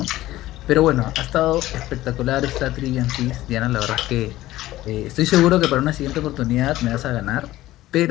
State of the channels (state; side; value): quieter; right; 15.9 dB